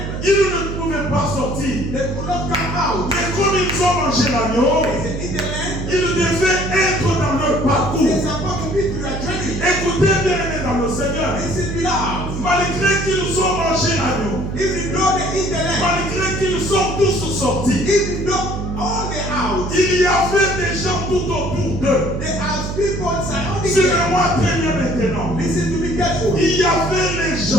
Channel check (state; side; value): noise; right; hum, 5 dB below the sound